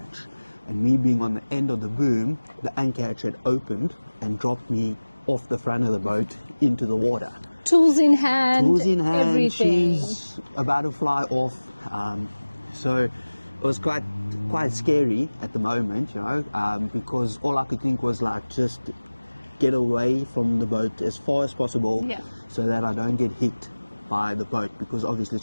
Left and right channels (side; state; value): both; inverted; correlation -1.00